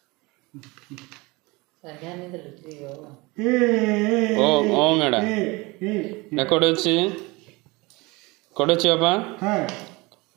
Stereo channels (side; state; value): left; quieter; 24.3 dB